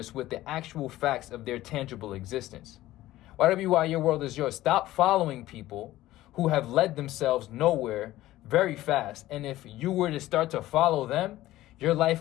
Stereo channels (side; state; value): right; quieter; 15.7 dB